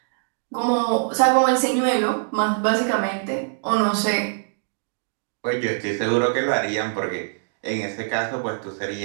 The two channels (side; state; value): left; silent; digital silence